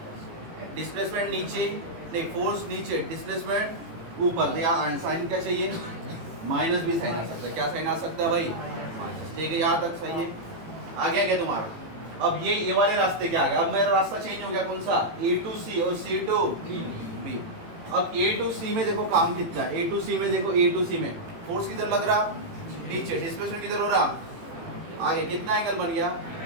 displacement नीचे नहीं, फोर्स नीचे डिस्प्लेसमेंट ऊपर, तो यहाँ साइन क्या चाहिए माइनस भी साइन आ सकता है, क्या साइन आ सकता है भाई, ठीक है यहाँ तक सही है। आ गया क्या तुम्हारा, अब ये वाले रास्ते क्या आ गया, अब मेरा रास्ता चेंज हो गया कौन सा ए टू सी और सी टू बी। अब ए टू सी में देखो काम कितना है, ए टू सी में देखो, ए टू सी में फोर्स किधर लग रहा नीचे, डिस्प्लेसमेंट किधर हो रहा आगे, कितना एंगल बन गया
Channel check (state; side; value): late; left; 18 ms